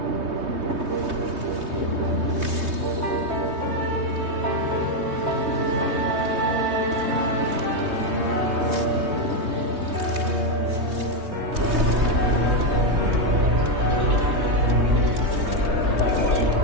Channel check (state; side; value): late; left; 3.2 ms